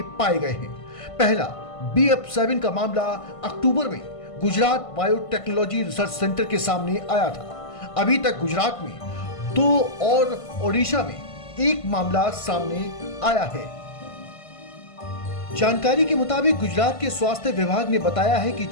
पाए गए हैं। पहला BF7 का मामला अक्टूबर में गुजरात बायोटेक्नोलॉजी रिसर्च सेंटर के सामने आया था। अभी तक गुजरात में 2 और ओडिशा में 1 मामला सामने आया है। जानकारी के मुताबिक गुजरात के स्वास्थ्य विभाग ने बताया है कि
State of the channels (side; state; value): right; late; 1.5 ms